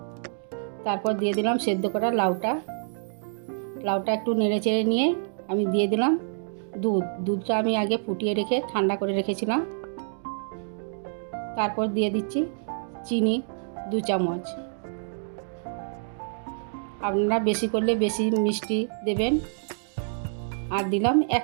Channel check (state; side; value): silent; left; digital silence